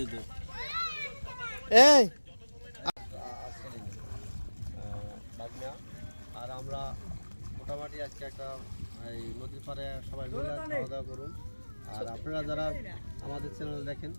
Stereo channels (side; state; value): both; inverted; correlation -1.00